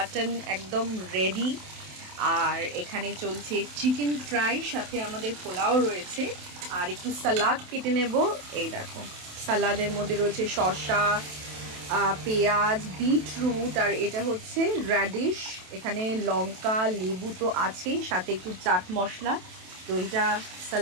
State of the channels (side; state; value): left; late; 27 ms